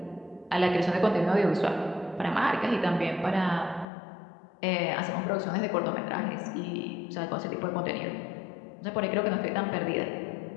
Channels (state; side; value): drops out; right; at 3.9 s